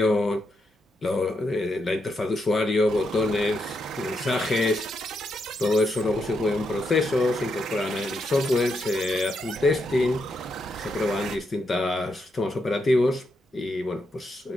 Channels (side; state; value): both; normal; correlation 0.81